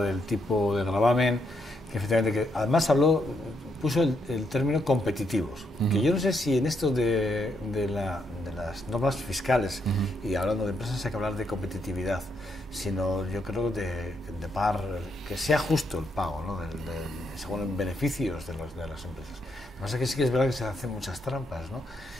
del tipo de gravamen, que efectivamente, además puso el término competitivos, que yo no sé si en esto de las normas fiscales, y hablando de empresas hay que hablar de competitividad, sino yo creo que sea justo el pago, ¿no? Según beneficios de las empresas. Lo que pasa es que sí que es verdad que se hacen muchas trampas, ¿no?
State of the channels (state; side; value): normal; both; correlation 0.78